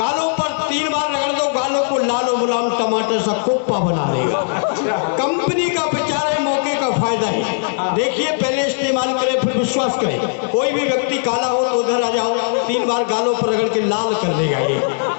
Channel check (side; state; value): right; silent; 67 dB below the other